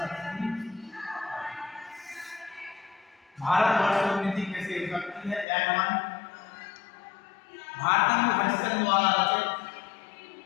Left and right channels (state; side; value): drops out; right; at 5.5 s